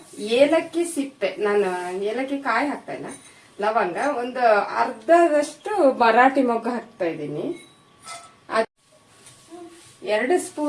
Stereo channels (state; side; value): identical; both; correlation 1.00